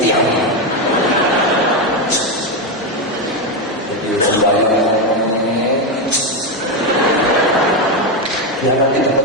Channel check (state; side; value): normal; both; correlation 0.09